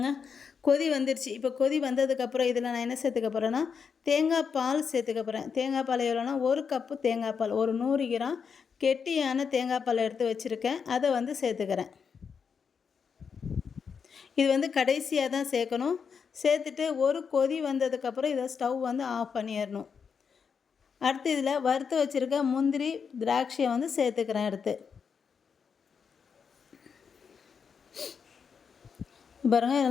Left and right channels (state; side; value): quieter; right; 6.3 dB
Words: கொதி வந்துருச்சு. இப்போ கொதி வந்ததுக்கப்புறம் இதில் நான் என்ன சேர்த்துக்க போகிறேன்னா, தேங்காய் பால் சேர்த்துக்க போகிறேன். தேங்காய் பால் எவ்வளோனா, ஒரு கப்பு தேங்காய் பால், ஒரு 100 கிராம் கெட்டியான தேங்காய் பால் எடுத்து வச்சுருக்கேன். அதை வந்து சேர்த்துக்கிறேன். இது வந்து கடைசியாக தான் சேர்க்கணும். சேர்த்துட்டு ஒரு கொதி வந்ததுக்கப்புறம் இதை ஸ்டவ் வந்து ஆஃப் பண்ணிடணும். அடுத்து இதில் வறுத்து வச்சுருக்க முந்திரி திராட்சையை வந்து சேர்த்துக்கிறேன். அடுத்து பாருங்கள்,